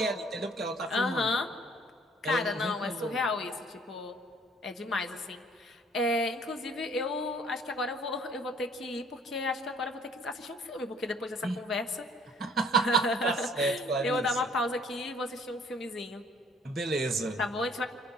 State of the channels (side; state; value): both; normal; correlation 0.57